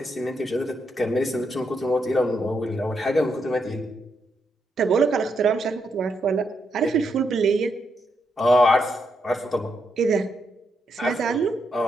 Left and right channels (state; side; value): normal; both; correlation 0.80